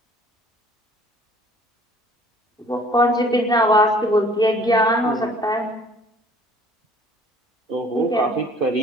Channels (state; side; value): normal; both; correlation 0.54